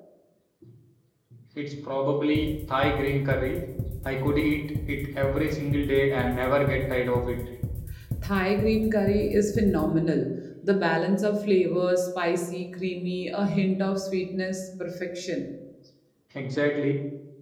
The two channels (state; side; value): identical; both; correlation 1.00